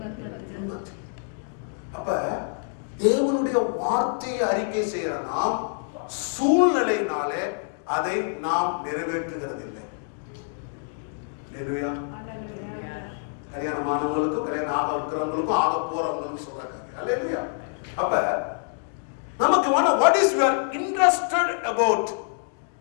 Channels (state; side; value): silent; right; 61 dB below the other